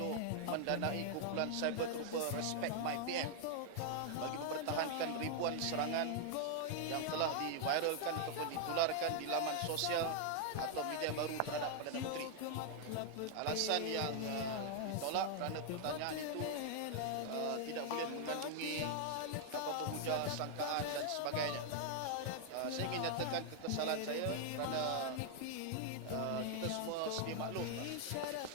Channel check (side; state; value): both; different; correlation 0.00